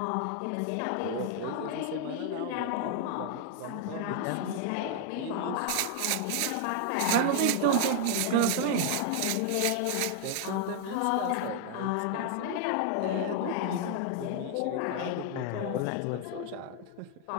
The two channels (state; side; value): different; both; correlation 0.00